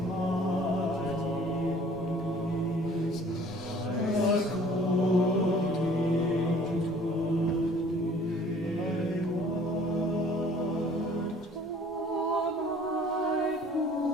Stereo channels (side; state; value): both; normal; correlation 0.53